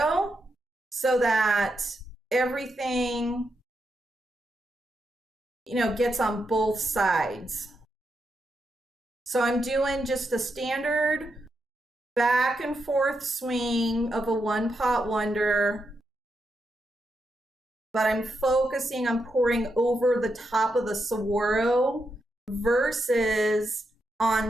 so that everything, you know, gets on both sides. So I'm doing just a standard back and forth swing of a one pot wonder, but I'm focusing on pouring over the top of the Saguaro versus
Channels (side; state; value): both; normal; correlation 0.84